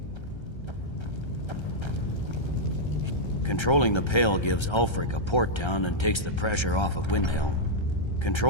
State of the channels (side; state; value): right; late; 1.3 ms